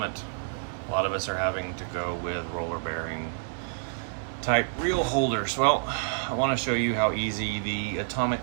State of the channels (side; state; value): left; silent; 59 dB below the other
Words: a lot of us are having to go with roller bearing type reel holders. Well, I want to show you how easy the